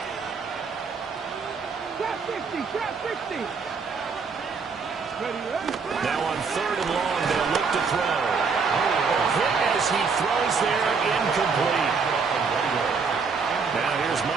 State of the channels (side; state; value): left; quieter; 5.2 dB